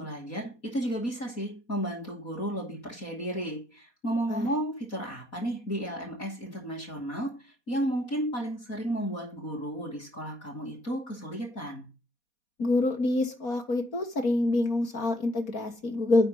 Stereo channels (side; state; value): right; late; 4.2 ms